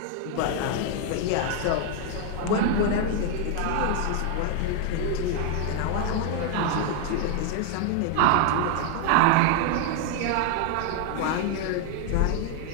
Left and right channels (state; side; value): different; both; correlation 0.00